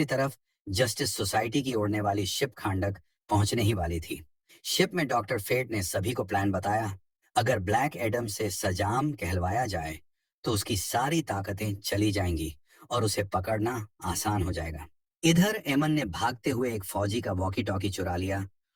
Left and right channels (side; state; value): both; identical; correlation 1.00